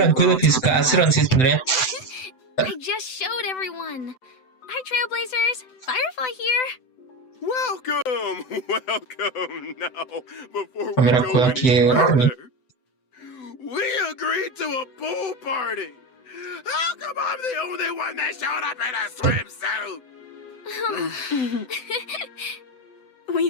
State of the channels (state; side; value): late; right; 7.9 ms